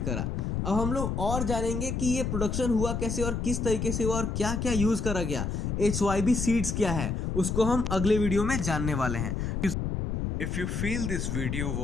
करा। अब हम लोग और जानेंगे कि ये प्रोडक्शन हुआ कैसे और किस तरीके से हुआ और क्या क्या यूज करा गया। HYB सीड्स क्या है उसको हम अगले वीडियो में जानने वाले हैं। If you feel this video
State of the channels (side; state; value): left; noise; rumble, 2 dB below the sound